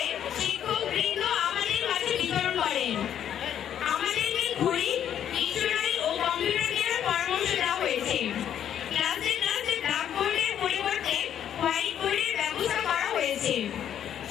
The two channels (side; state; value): right; quieter; 9.8 dB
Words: শিক্ষকবৃন্দ আমাদের মাঝে বিতরণ করেন। আমাদেরকে ঘড়ি, ডিকশনারি ও কম্পিউটার কেনার পরামর্শ দেওয়া হয়েছে। ক্লাসে ক্লাসে ব্ল্যাকবোর্ডের পরিবর্তে হোয়াইট বোর্ডের ব্যবস্থা করা হয়েছে।